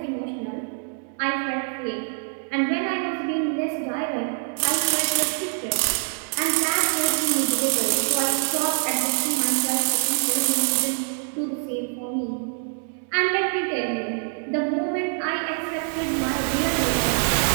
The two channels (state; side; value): silent; left; 57 dB below the other